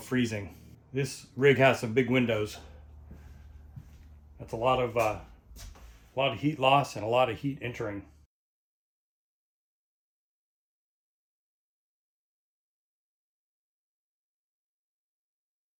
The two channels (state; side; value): identical; both; correlation 1.00